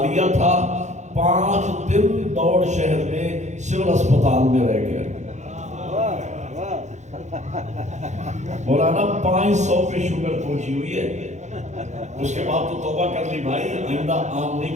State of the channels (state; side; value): late; left; 0.34 ms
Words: لیا تھا، 5 دن دوڑ شہر میں سول اسپتال میں رہ گیا۔ مولانا 500 پہ شوگر پہنچی ہوئی ہے، اس کے بعد تو توبہ کر لی بھائی، آئندہ آم